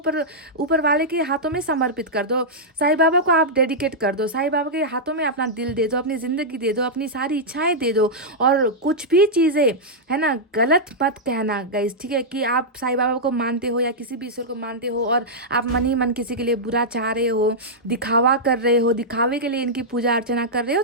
ऊपर वाले के हाथों में समर्पित कर दो। साईं बाबा को आप डेडिकेट कर दो, साईं बाबा के हाथों में अपना दिल दे दो, अपनी ज़िंदगी दे दो, अपनी सारी इच्छाएं दे दो। और कुछ भी चीज़ें, है ना, गलत मत कहना गाइस, ठीक है, कि आप साईं बाबा को मानते हो या किसी भी ईश्वर को मानते हो और आप मन ही मन किसी के लिए बुरा चाह रहे हो, दिखावा कर रहे हो, दिखावे के लिए इनकी पूजा अर्चना कर रहे हो,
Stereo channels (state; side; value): normal; both; correlation -0.08